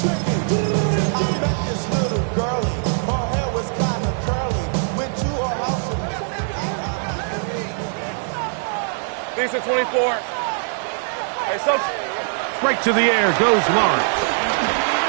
Decent 24. Hey, so Right to the air goes Lawrence.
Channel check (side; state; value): left; silent; 60 dB below the other